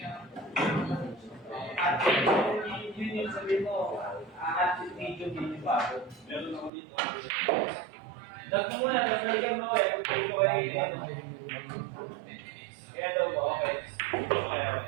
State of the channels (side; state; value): left; drops out; at 6.7 s